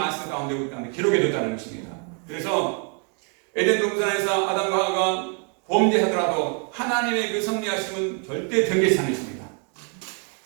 가운데 우리 가운데 기록해 뒀다는 것입니다. 그래서 에덴 동산에서 아담과 하와가 범죄하더라도 하나님의 그 섭리하심은 절대 변개치 않으십니다.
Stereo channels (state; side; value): quieter; left; 39.8 dB